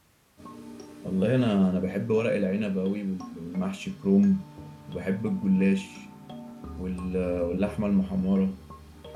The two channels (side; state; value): both; identical; correlation 1.00